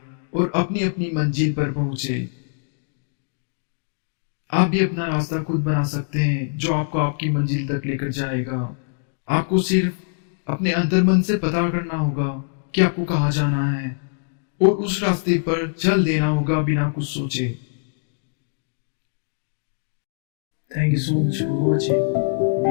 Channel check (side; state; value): right; silent; digital silence